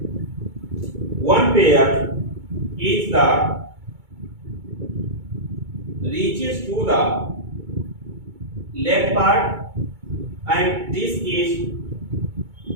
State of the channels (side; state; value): left; late; 2.2 ms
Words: one pair is the reaches to the leg part, and this is